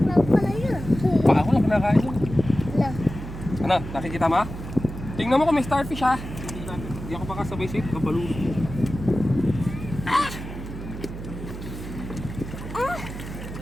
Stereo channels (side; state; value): right; noise; hum, 10 dB below the sound